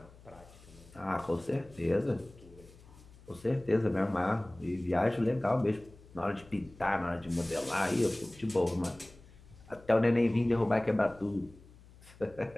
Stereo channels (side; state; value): left; noise; hum, 23 dB below the sound